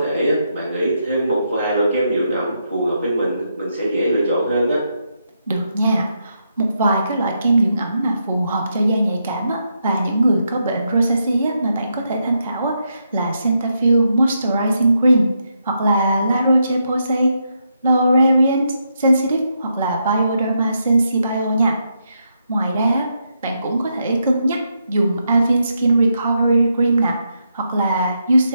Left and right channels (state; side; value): inverted; both; correlation -0.81